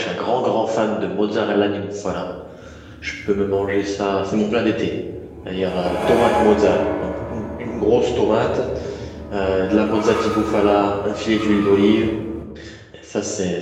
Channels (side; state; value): both; identical; correlation 1.00